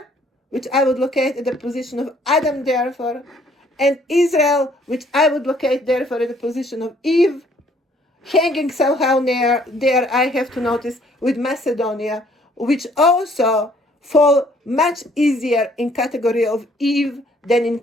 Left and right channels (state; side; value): normal; both; correlation 0.62